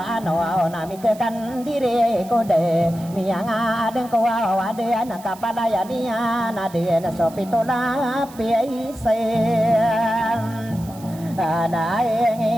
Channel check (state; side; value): noise; right; hiss, 21 dB below the sound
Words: ano nami kekan diri kode miang adeng kawa ade anak kapalaya dia nade sopitola piaisen